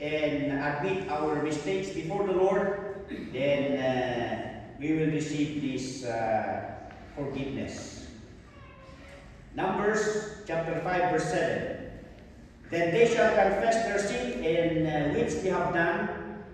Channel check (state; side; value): identical; both; correlation 1.00